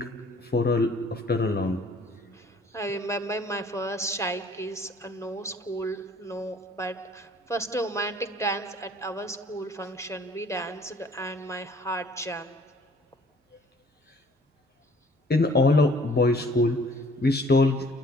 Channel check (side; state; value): both; normal; correlation 0.55